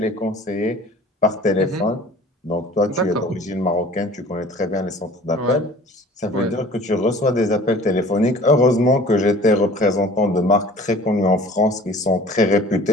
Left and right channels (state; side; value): normal; both; correlation 0.46